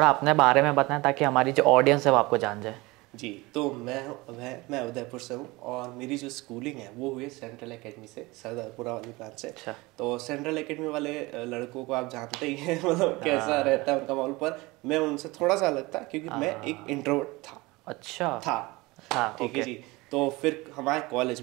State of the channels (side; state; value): left; quieter; 22.5 dB